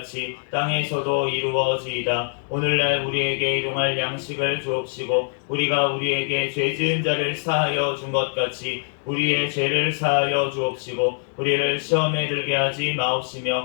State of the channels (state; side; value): silent; right; 63 dB below the other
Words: 땅에서도 이루어지이다. 오늘날 우리에게 일용할 양식을 주옵시고 우리가 우리에게 죄 지은 자를 사하여 준 것 같이 우리의 죄를 사하여 주옵시고 우리를 시험에 들게 하지